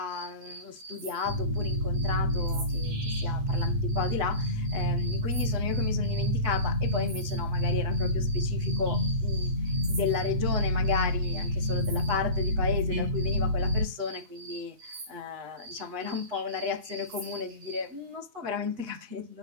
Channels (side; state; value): left; late; 8.1 ms